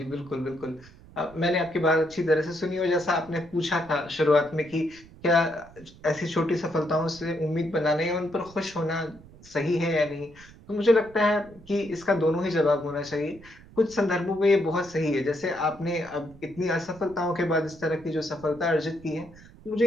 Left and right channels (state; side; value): noise; right; rumble, 21 dB below the sound